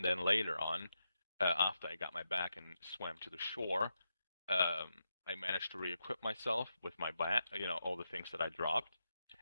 then later on, after I got my back and swam to the shore, um, I managed to re-equip myself with my bat, all the things that I dropped,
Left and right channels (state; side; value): inverted; both; correlation -0.87